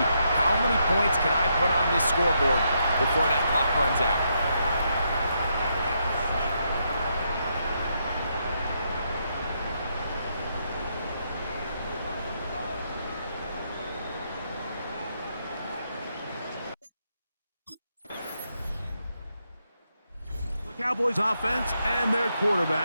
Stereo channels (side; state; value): both; inverted; correlation -0.79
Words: how many points can I put on this scoreboard before that clock runs out. Cowboys offense and their